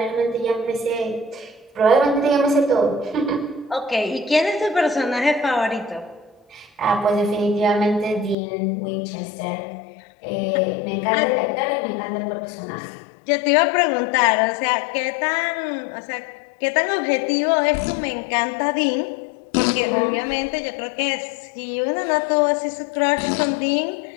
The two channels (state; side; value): drops out; right; at 8.3 s